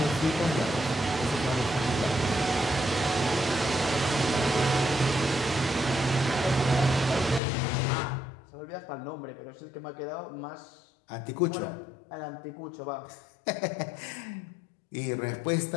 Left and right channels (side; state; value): right; drops out; at 7.4 s